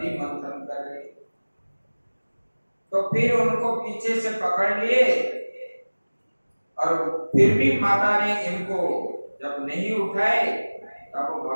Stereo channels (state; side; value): inverted; both; correlation -1.00